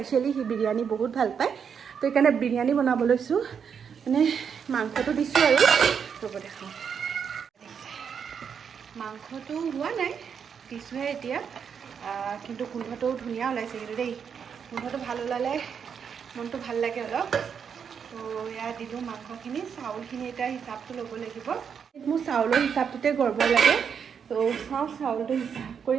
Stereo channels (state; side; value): quieter; left; 7.1 dB